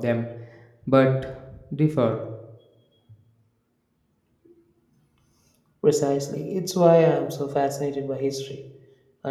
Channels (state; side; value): identical; both; correlation 1.00